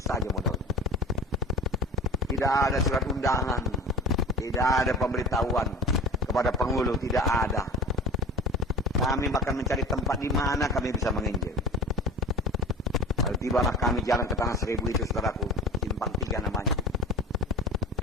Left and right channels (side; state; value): both; normal; correlation 0.32